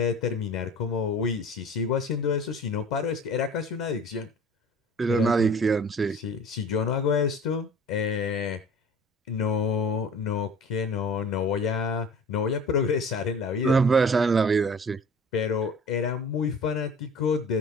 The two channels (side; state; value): both; normal; correlation 0.43